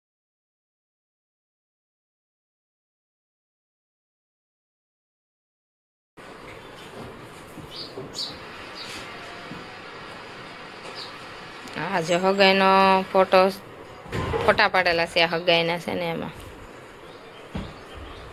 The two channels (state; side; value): identical; both; correlation 1.00